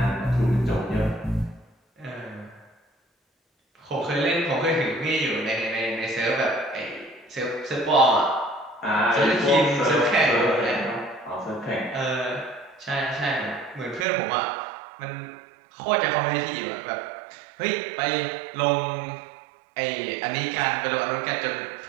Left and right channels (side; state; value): left; drops out; at 14.1 s